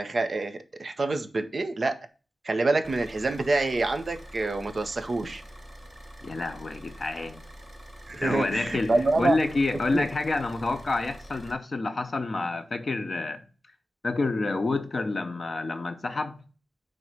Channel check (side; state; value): both; normal; correlation 0.92